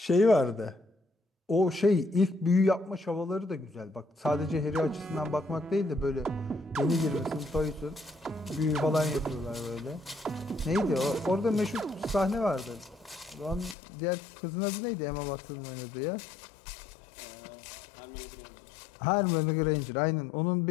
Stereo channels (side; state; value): right; drops out; at 13.8 s